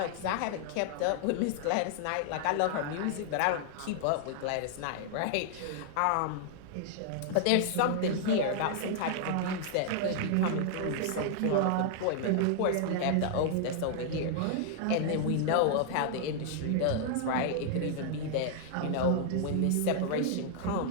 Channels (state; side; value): different; both; correlation -0.01